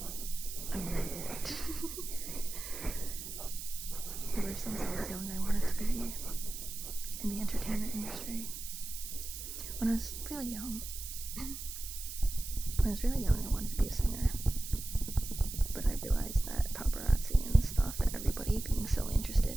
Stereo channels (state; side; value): noise; right; hiss, 8 dB below the sound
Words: I need it. Ever since I was young, I wanted to be in the entertainment industry. When I was really young, I wanted to be a singer. But I realized that paparazzi and stuff and everybody being so interested